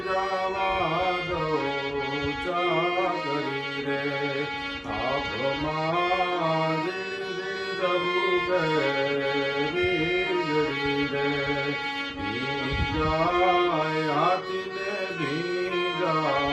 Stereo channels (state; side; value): identical; both; correlation 1.00